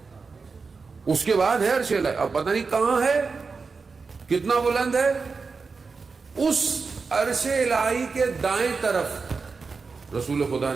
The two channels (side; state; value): left; quieter; 4.7 dB